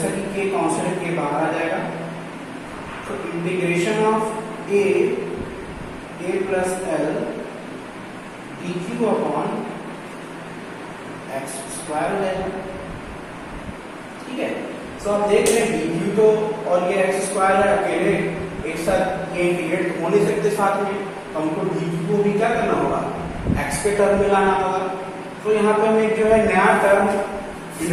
कि के कांस्टेंट के बाहर आ जाएगा, तो integration of A plus L D q upon x square हो जाएगा। ठीक है, तो आप देख रहे हैं डी क्यू तो और ये एक्स स्क्वायर है, अकेले एक साथ ये इंटीग्रेट हो नहीं सकते साथ में, तो हमको डी क्यू को भी क्या करना होगा, एक्स के टर्म में लाना होगा। तो यहाँ पे हम एक जो है नया टर्म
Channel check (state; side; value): identical; both; correlation 1.00